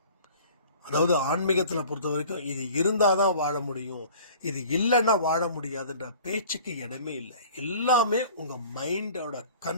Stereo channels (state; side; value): inverted; both; correlation -0.47